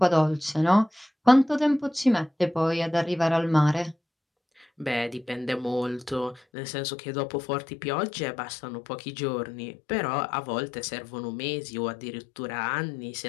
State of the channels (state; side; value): drops out; right; at 6.4 s